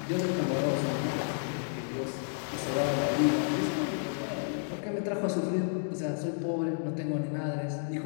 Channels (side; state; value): right; silent; digital silence